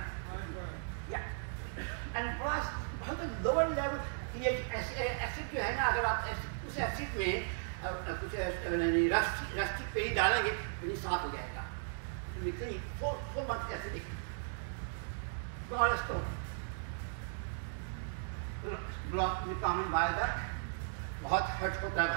या एंड बहुत लोअर लेवल ये एसिड जो है ना, अगर आप उस एसिड में कुछ रस्टी पेनी डालेंगे पेनी साफ हो जाएगा। तो निकलेंगे 4 मंथ ऐसे दिखेंगे। कॉमन वायरस बहुत हर्ट होता है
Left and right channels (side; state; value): left; silent; digital silence